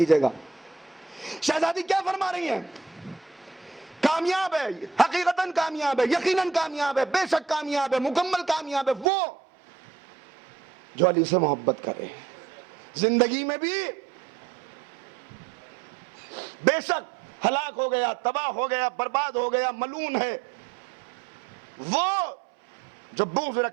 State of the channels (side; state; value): left; drops out; at 9.1 s